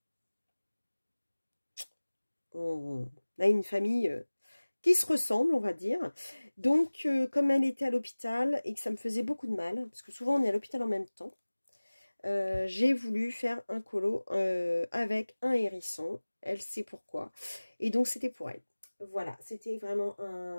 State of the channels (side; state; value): both; inverted; correlation -1.00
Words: on a une famille qui se ressemble, on va dire. Donc, comme elle était à l'hôpital et que ça me faisait beaucoup de mal, parce que souvent on est à l'hôpital en même temps, j'ai voulu faire un colo avec un hérisson. Elle sait pourquoi. Et donc, c'était pour elle. Voilà, c'était vraiment